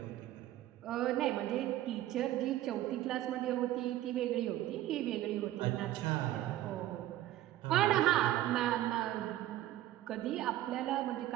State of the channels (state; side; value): quieter; left; 14.1 dB